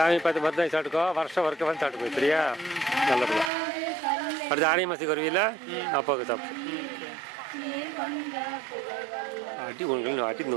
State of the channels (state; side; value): drops out; left; at 3.5 s